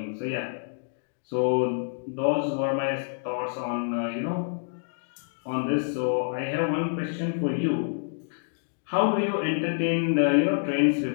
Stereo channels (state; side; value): silent; right; digital silence